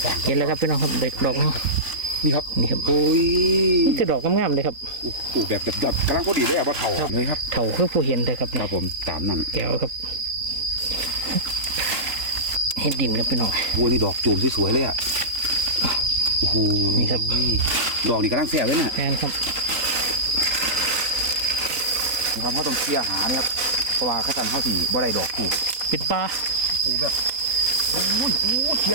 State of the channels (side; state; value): left; late; 3.8 ms